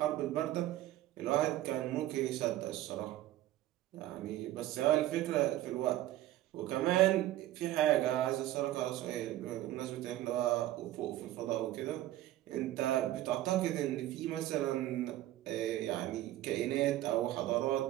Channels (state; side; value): quieter; left; 14.7 dB